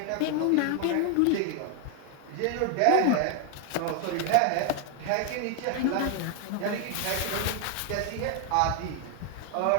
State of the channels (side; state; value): both; different; correlation 0.01